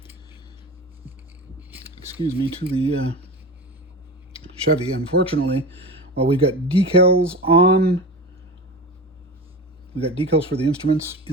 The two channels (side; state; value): both; normal; correlation 0.28